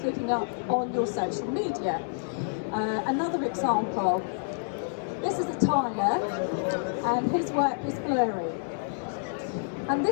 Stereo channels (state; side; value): silent; right; digital silence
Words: looking up on your social media. Another example, this is a tiler, and his work is blurry. And